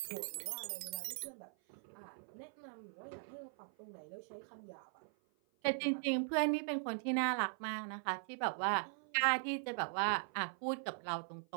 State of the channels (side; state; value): left; silent; 51 dB below the other